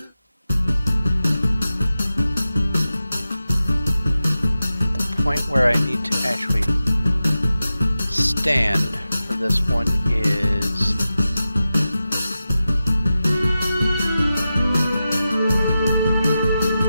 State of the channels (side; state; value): both; inverted; correlation -0.93